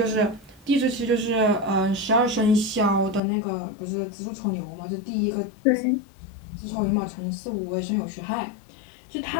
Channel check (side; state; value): right; drops out; at 3.2 s